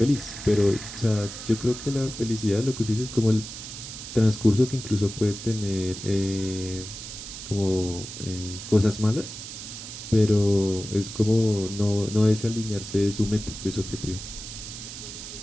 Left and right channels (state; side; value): noise; right; hiss, 10 dB below the sound